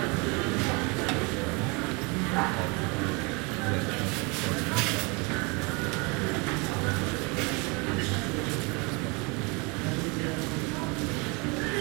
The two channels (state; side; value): quieter; left; 29.5 dB